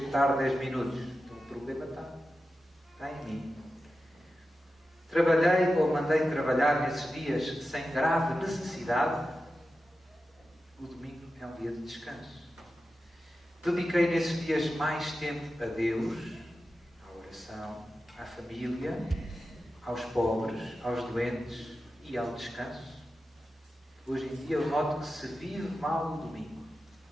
tarde 10 minutos, então o problema está em mim. Trabalhei ou mandei trabalhar nesses dias sem grave necessidade. O domingo é um dia de descanso. Dediquei nesses dias mais tempo a Deus, à oração, à família, aos pobres, aos doentes e ao descanso. Hoje em dia eu noto que se vive mal o domingo.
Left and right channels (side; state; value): both; normal; correlation 0.92